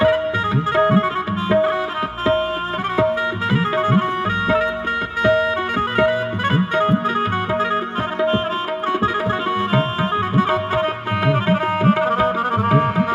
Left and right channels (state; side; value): identical; both; correlation 1.00